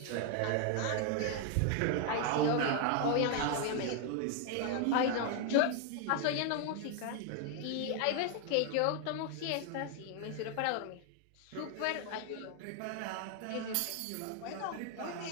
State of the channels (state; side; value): different; both; correlation 0.00